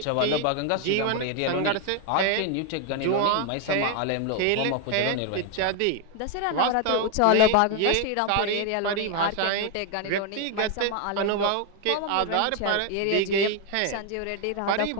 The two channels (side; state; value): both; different; correlation 0.01